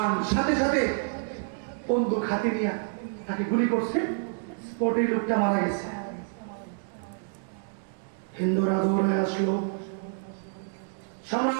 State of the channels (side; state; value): left; silent; digital silence